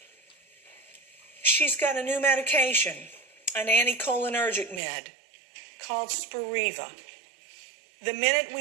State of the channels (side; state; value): left; drops out; at 4.8 s